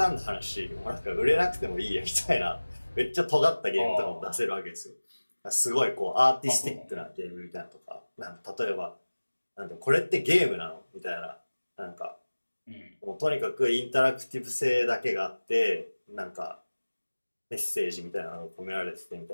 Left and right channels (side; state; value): both; inverted; correlation -1.00